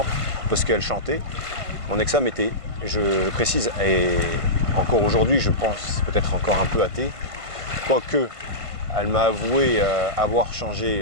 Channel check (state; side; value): late; left; 1.5 ms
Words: parce qu'elle chantait. Mon ex-femme était, je précise, et encore aujourd'hui, je pense peut-être encore un peu athée, quoique elle m'a avoué avoir